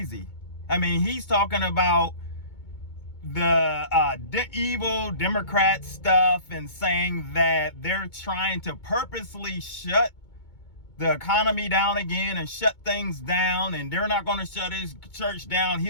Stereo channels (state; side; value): late; right; 2.2 ms